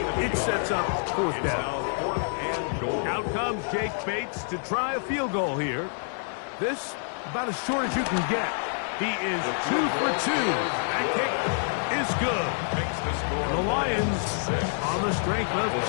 It sets up fourth down. Out comes Jake Bates to try a field goal here. This, about as short as you can get. He is 2 for 2. That kick is good. The Lions, on the strength of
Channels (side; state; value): right; silent; 60 dB below the other